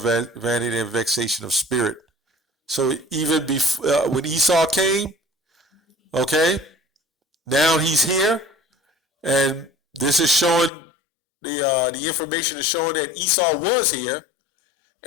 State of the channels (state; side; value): drops out; right; at 10.7 s